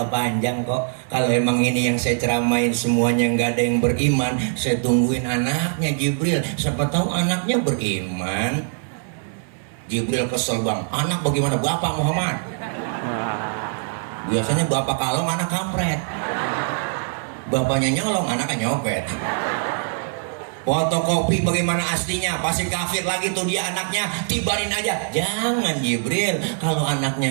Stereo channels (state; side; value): silent; left; 64 dB below the other